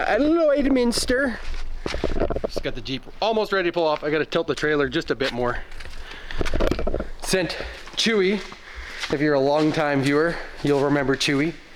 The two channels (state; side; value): identical; both; correlation 1.00